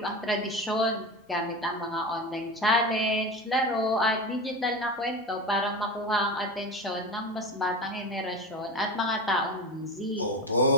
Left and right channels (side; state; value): both; normal; correlation 0.26